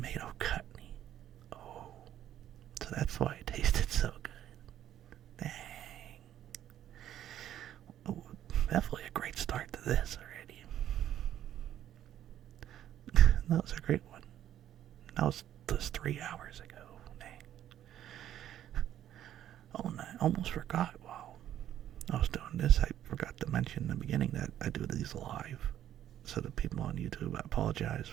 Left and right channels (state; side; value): quieter; left; 11.3 dB